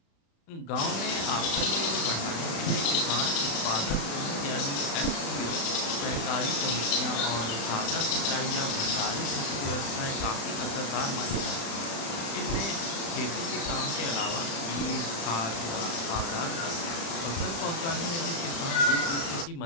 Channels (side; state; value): right; late; 35 ms